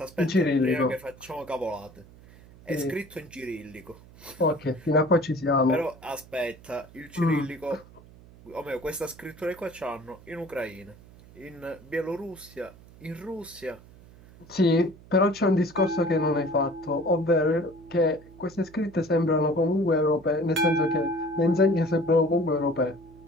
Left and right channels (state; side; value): noise; right; hum, 22 dB below the sound